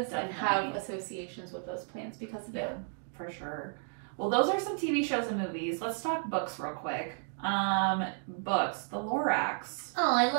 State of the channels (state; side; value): silent; left; 56 dB below the other